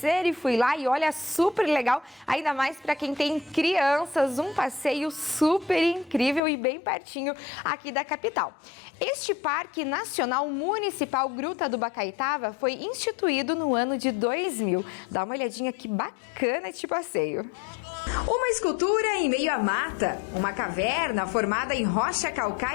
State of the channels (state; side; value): drops out; right; at 6.4 s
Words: e fui lá e olha, super legal, ainda mais para quem tem crianças, um passeio super incrível e bem pertinho aqui da capital. Este Parque Nacional Municipal Gruta do Bacaitava foi instituído no ano de 2000. Dá uma olhadinha que bacana este passeio. Uma escultura em meio à mata, uma caverna formada em rocha